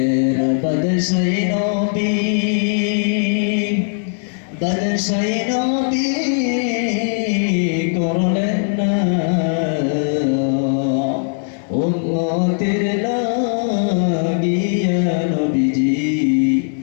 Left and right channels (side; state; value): right; silent; 67 dB below the other